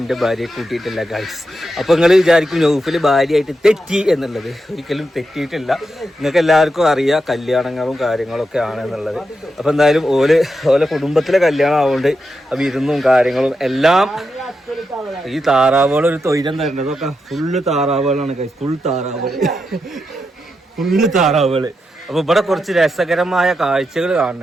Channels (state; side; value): normal; both; correlation 0.86